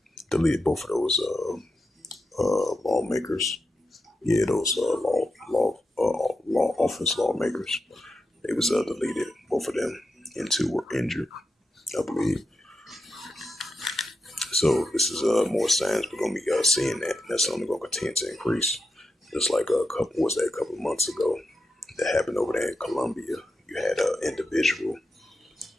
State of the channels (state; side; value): normal; both; correlation 0.88